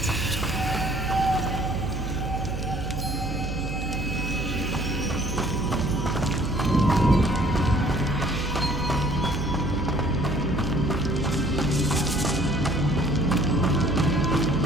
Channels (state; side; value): noise; right; hum, 5 dB below the sound